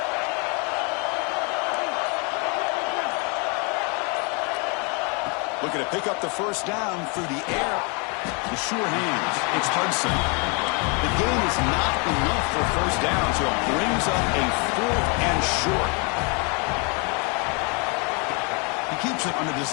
Looking to pick up the first down through the air. The sure hands. It's Hudson. The game is not enough for first down, so it brings up a 4th and short. He keeps it on the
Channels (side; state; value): right; quieter; 33.7 dB